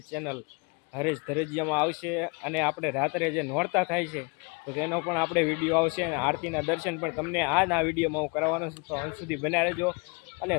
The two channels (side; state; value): right; quieter; 31.4 dB